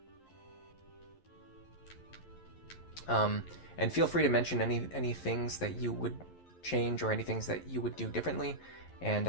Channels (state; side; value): late; right; 11 ms